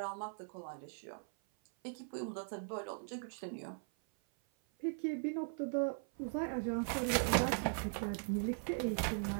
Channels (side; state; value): left; silent; 51 dB below the other